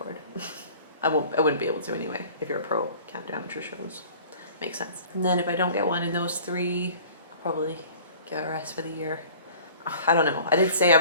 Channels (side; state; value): both; inverted; correlation -0.46